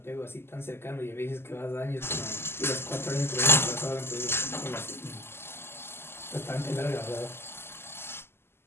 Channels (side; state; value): right; late; 0.12 ms